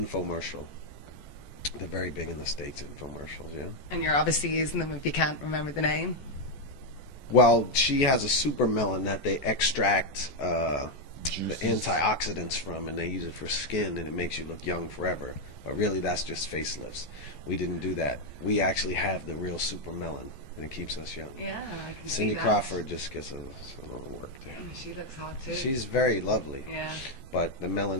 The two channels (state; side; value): late; right; 14 ms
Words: They're very big in the States, infomercials, yeah? And you're obviously using them if you can't remember the name. Well, she has a super melon that they extract the antioxidants from, and they use it for skin, and it makes you look young forever. But really, that's just facelifts. We didn't do that. We actually have the real super melon, and it keeps us young. Yeah, I can Cindy see that. Crawford just gets a little work there. She looks hot, too. She's very lovely. Yeah. But the